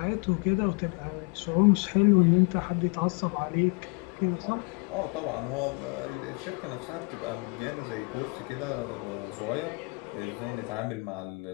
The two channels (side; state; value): right; quieter; 31.7 dB